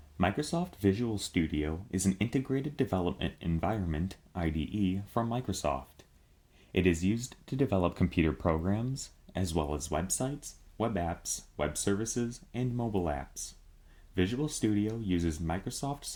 Microsoft Visual Studio is an integrated development environment, IDE, from Microsoft. It is used to develop computer programs, as well as websites, web apps, web services, and mobile apps. Visual Studio uses Microsoft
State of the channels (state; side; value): identical; both; correlation 1.00